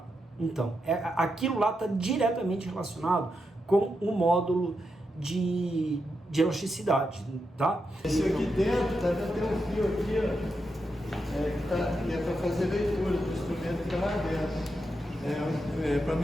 Então, aquilo lá está diretamente relacionado com o módulo de elasticidade, tá? Esse aqui dentro, tá dentro, tem um fio aqui, ó, que é para fazer leitura do instrumento que está lá dentro. Para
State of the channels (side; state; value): both; normal; correlation 0.85